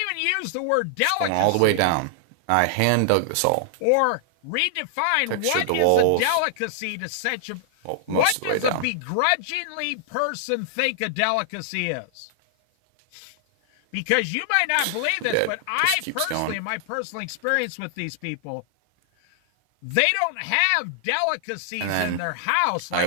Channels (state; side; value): different; both; correlation -0.01